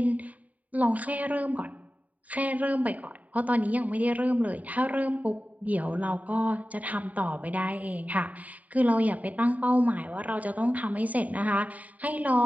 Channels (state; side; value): late; left; 0.072 ms